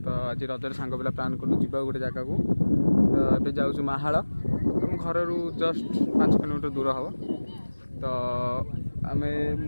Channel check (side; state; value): both; inverted; correlation -1.00